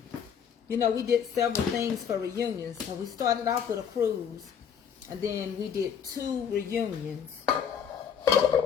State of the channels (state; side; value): quieter; right; 7.8 dB